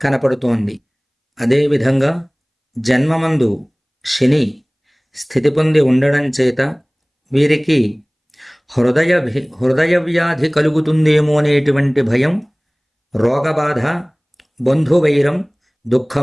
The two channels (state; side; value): identical; both; correlation 1.00